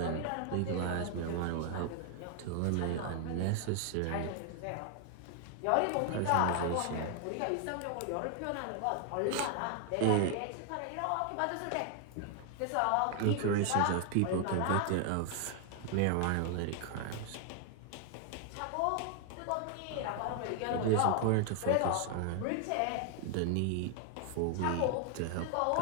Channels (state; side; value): different; both; correlation 0.00